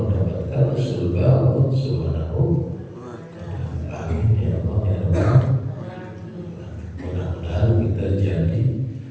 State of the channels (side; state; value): both; identical; correlation 1.00